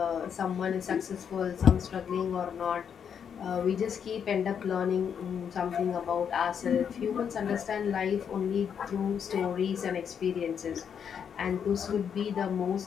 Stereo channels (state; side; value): quieter; right; 7.7 dB